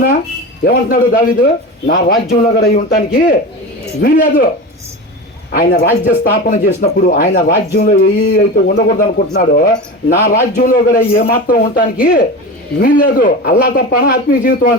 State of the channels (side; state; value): both; normal; correlation 0.27